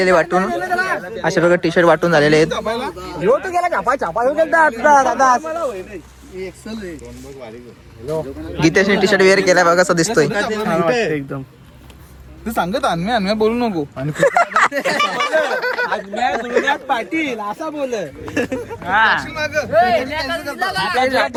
वाटून अशा प्रकारे टी शर्ट वाटून झालेले आहेत. गीतेशने टी शर्ट वेअर केला बघा कसं दिसतोय. एकदम तू सांगत अन्म्या बोलू नको. आणि पाटील असा बोल.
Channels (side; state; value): both; identical; correlation 1.00